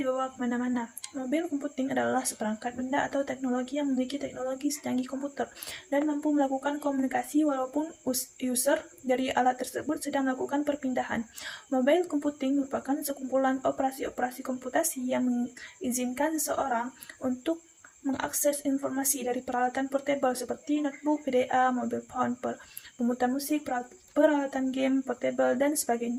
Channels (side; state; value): both; identical; correlation 1.00